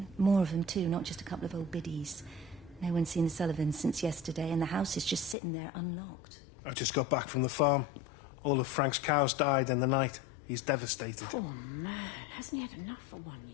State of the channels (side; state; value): right; drops out; at 5.4 s